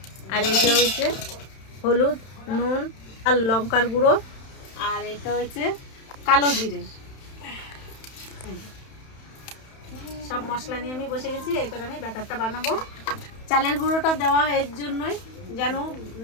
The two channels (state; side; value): late; right; 31 ms